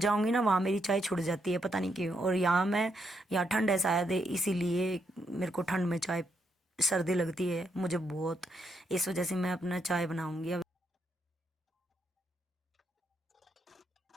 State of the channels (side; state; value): both; normal; correlation 0.78